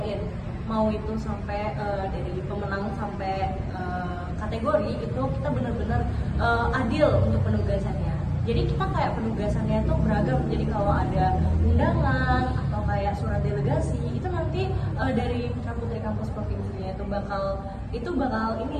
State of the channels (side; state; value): both; identical; correlation 1.00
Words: mau itu sampai dari pemenang sampai kategori itu kita bener-bener adil untuk penugasannya. Jadi kita kayak penugasannya itu beragam. Jadi kalau ada undangan atau kayak surat delegasi itu nanti dari Putra Putri Kampus Provinsinya itu bakal